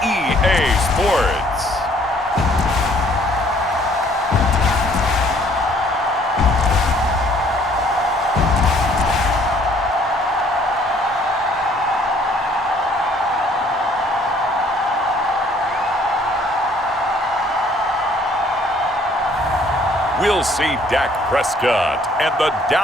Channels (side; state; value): both; normal; correlation 0.60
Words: EA Sports. We'll see Dak Prescott and the